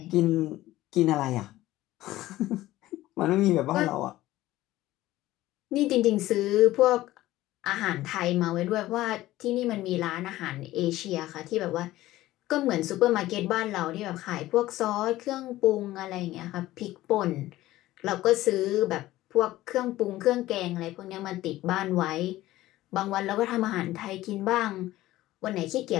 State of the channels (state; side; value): quieter; right; 16.0 dB